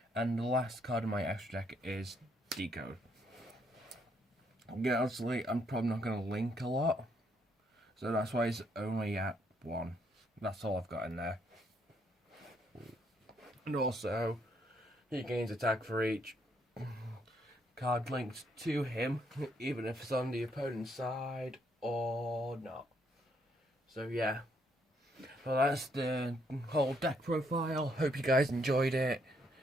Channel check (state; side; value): normal; both; correlation 0.71